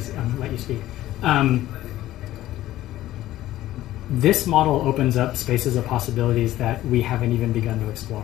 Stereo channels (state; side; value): quieter; right; 14.6 dB